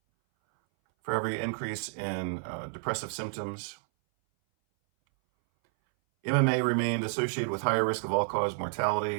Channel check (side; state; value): left; silent; 58 dB below the other